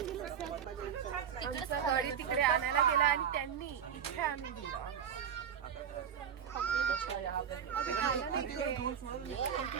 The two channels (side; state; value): left; quieter; 8.1 dB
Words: आमचं गाडी तिकडे आणायला गेला आणि त्यांनी इथे आणून दिलं.